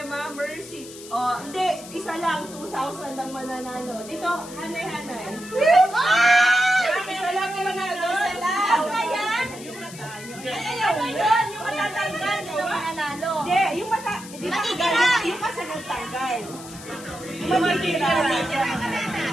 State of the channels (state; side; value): noise; left; hiss, 16 dB below the sound